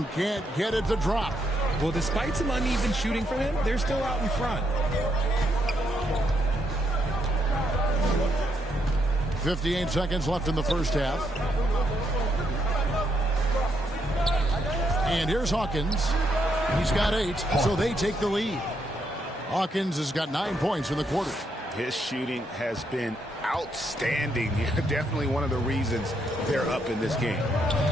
can't get it to drop. Well, despite some uneven shooting from him, they're still out in front. 58 seconds left in the first half. And here's Hawkins. He's got 8, so they take the lead. Hawkins has got 9 points in the quarter. His shooting has been outstanding. Definitely one of the reasons they're up in this game.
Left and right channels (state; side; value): normal; both; correlation 0.77